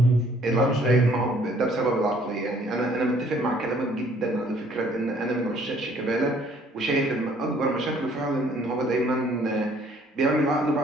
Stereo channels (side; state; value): both; normal; correlation 0.60